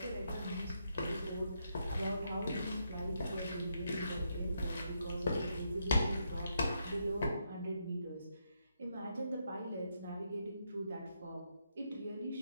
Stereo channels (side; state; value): both; inverted; correlation -0.79